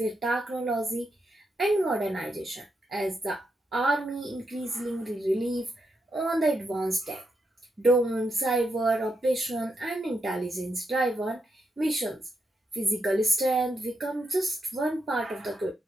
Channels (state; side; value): normal; both; correlation 0.83